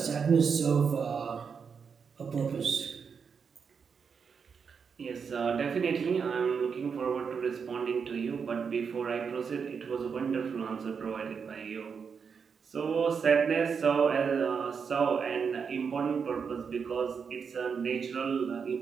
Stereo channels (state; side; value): quieter; left; 6.1 dB